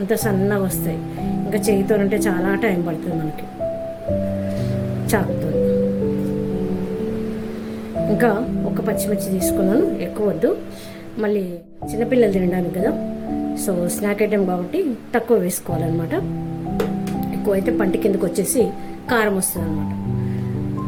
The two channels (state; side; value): identical; both; correlation 1.00